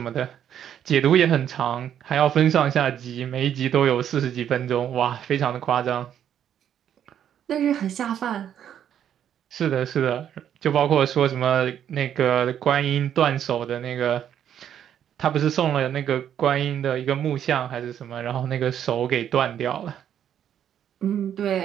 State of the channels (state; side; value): quieter; left; 9.7 dB